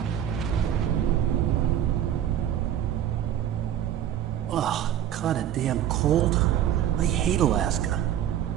Oh, kinda damn cold. I hate Alaska.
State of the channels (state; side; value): quieter; left; 10.7 dB